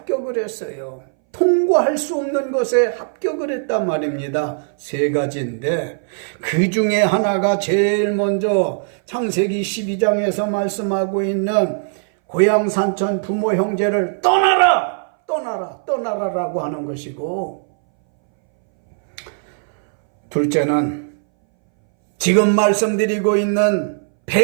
했어요. 통과할 수 없는 것에 합격을 했단 말입니다. 3가지인데 그 중에 하나가 제일 먼저 창세기 12장에서 말씀하고 있는 고향 산천 부모 형제를 떠나라라고 하는 것이고, 둘째는 지금 말씀드리고 있는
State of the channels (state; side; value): silent; left; 62 dB below the other